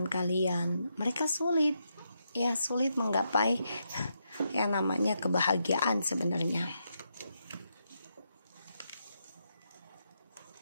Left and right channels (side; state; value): both; inverted; correlation -0.82